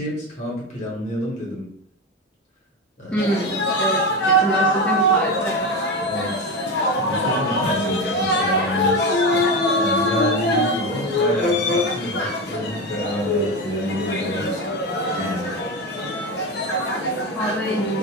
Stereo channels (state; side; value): normal; both; correlation 0.19